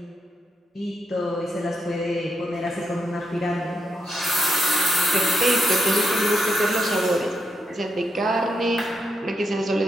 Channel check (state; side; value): normal; both; correlation 0.82